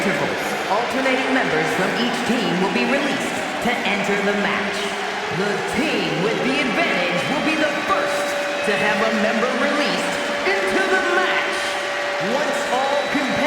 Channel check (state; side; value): identical; both; correlation 1.00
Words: alternating members from each team will be released to enter the match. The team with the advantage will be the first to have a member released into the match. Once all